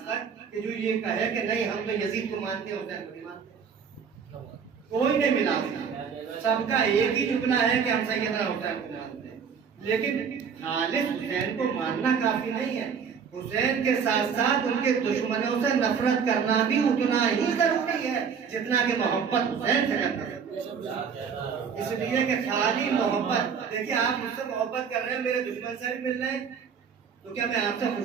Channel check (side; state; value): left; quieter; 6.7 dB